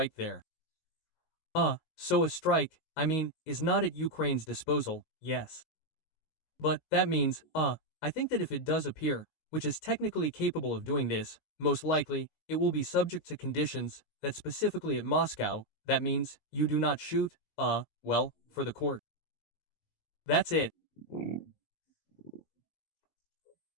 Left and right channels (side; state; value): right; late; 19 ms